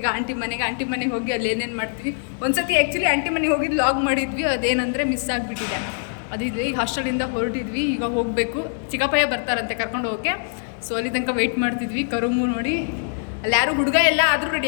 ಆಂಟಿ ಮನೆಗೆ ಹೋಗಿ ಅಲ್ಲಿ ಏನೇನು ಮಾಡ್ತೀವಿ. ಒಂದ್ಸತಿ ಆ್ಯಕ್ಚುಲಿ ಆಂಟಿ ಮನೆಗೆ ಹೋಗಿದ್ದು ಲಾಗ್ ಮಾಡಿದ್ವಿ, ಅದೇನಂದರೆ ಮಿಸ್ ಆಗಿಬಿಟ್ಟಿದೆ. ಅದಿದ್ವಿ ಈಗ ಹಾಸ್ಟೆಲಿಂದ ಹೊರಟಿದ್ವಿ, ಈಗ ಹೋಗಬೇಕು. ಚಿಕ್ಕಪ್ಪಯ್ಯ ಬರ್ತಾರಂತೆ ಕರ್ಕೊಂಡು ಹೋಗೋಕ್ಕೆ. ಸೊ ಅಲ್ಲಿ ತನಕ ವೆಯ್ಟ್ ಮಾಡ್ತಿದ್ವಿ. ಕರುಮು ನೋಡಿ ಅಲ್ಲಿ ಯಾರು ಹುಡುಗ ಎಲ್ಲ ಆದರೂ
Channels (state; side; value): silent; right; digital silence